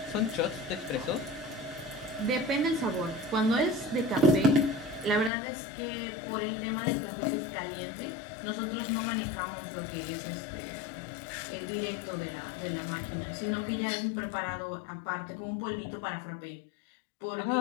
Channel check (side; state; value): right; drops out; at 5.3 s